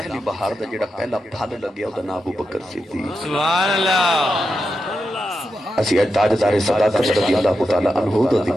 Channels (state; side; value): normal; both; correlation 0.88